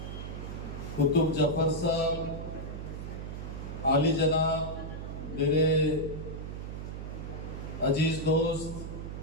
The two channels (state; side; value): noise; right; hum, 7 dB below the sound